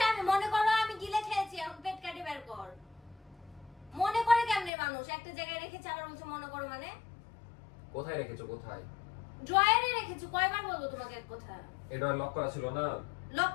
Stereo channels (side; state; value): right; drops out; at 4.7 s